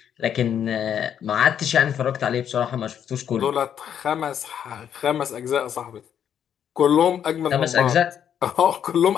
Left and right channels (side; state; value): right; quieter; 9.0 dB